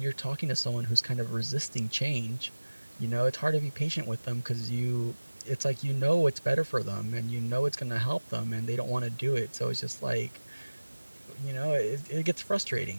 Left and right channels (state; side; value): inverted; both; correlation -1.00